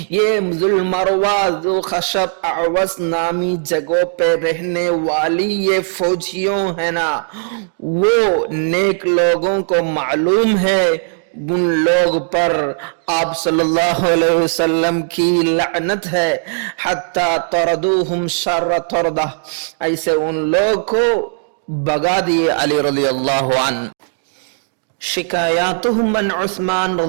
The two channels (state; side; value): silent; left; digital silence